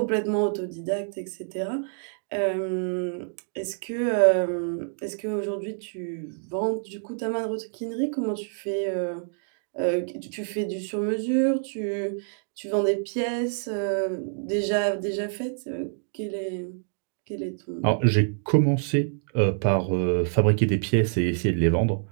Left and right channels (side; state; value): left; silent; digital silence